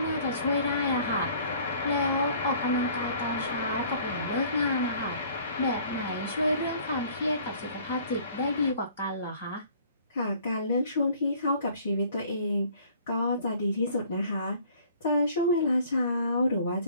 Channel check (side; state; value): both; inverted; correlation -0.54